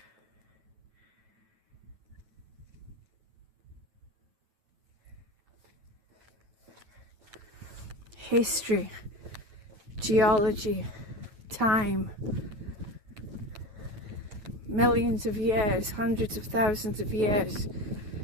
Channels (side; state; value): left; late; 9.2 ms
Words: History, geology, time, millions of years, hundreds of thousands of years.